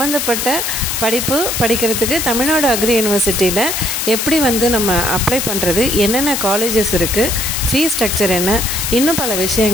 படிப்பு படிக்கிறதுக்கு தமிழ்நாடு அக்ரி யூனிவர்சிட்டியில் எப்படி நம்ம அப்ளை பண்ணுறது, என்னென்ன காலேஜஸ் இருக்குது, ஃபீஸ் ஸ்ட்ரக்சர் என்ன, இன்னும் பல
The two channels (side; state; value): left; noise; hiss, 1 dB below the sound